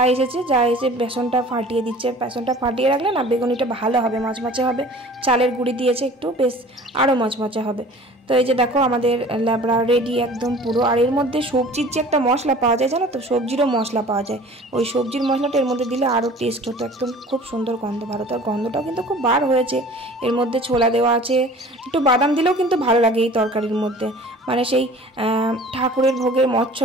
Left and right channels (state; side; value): normal; both; correlation 0.46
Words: এসে বেসনটা ফাটিয়ে দিচ্ছে, বেসনটা ফাটিয়ে রাখলে না বেগুনিটা ভালো হবে, মচমচে হবে, চালের গুঁড়ি দিয়েছে একটু, বেশ আরও মচমচে হবে। তো এই যে দেখো আমাদের ল্যাবড়া রেডি একদম পুরো। আর এর মধ্যে সবজির যে একটা মশলা পাওয়া যায় জানো তো, সবজিরও মশলা পাওয়া যায়, ওই সবজির মশলাটা এর মধ্যে দিলে আরও টেস্ট হতো, একদম খুব সুন্দর গন্ধ ভালো। তার গন্ধটাও কিন্তু খুব বার হয়েছে। এর মধ্যে ছোলা দেওয়া আছে, একটু বাদাম দিলেও কিন্তু ভালো লাগে এই তরকারির মধ্যে, মানে সেই ঠাকুরের ভোগের